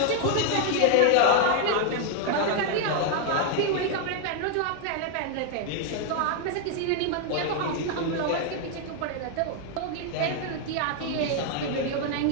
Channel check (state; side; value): different; both; correlation 0.00